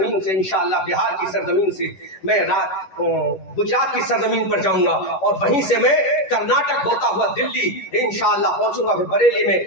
से इंशाअल्लाह बिहार की सरजमीन से मैं गुजरात की सरजमीन पर जाऊंगा और वहीं से मैं कर्नाटक होता हुआ दिल्ली इंशाअल्लाह पहुंचूंगा। फिर बरेली में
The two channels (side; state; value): right; late; 11 ms